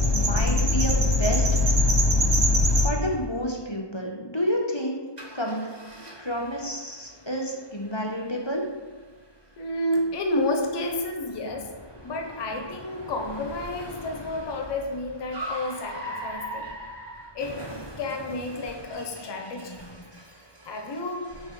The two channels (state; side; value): late; right; 1.2 ms